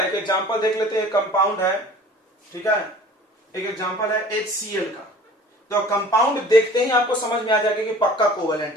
एक एग्जाम्पल देख लेते हैं, कंपाउंड है, ठीक है। एक एग्जाम्पल है HCl का। तो कंपाउंड देखते ही आपको समझ में आ जाएगा कि पक्का कोवेलेंट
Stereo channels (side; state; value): both; normal; correlation 0.46